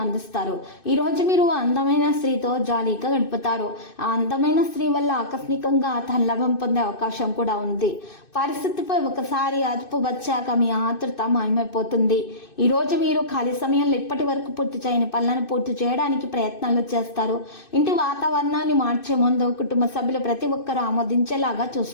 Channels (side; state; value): right; late; 2.6 ms